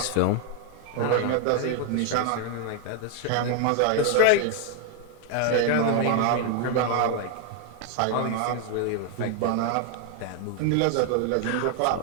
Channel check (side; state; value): both; different; correlation 0.01